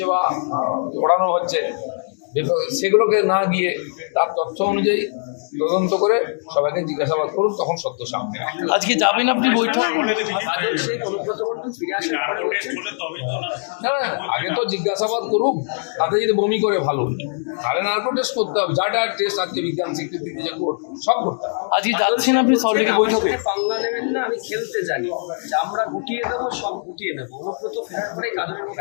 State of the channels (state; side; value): silent; right; digital silence